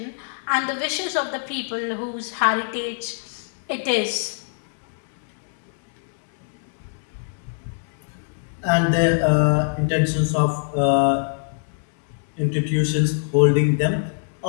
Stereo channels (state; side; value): silent; right; 62 dB below the other